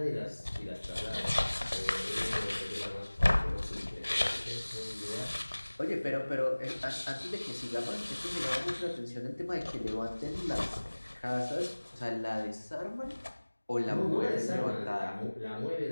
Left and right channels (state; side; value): inverted; both; correlation -1.00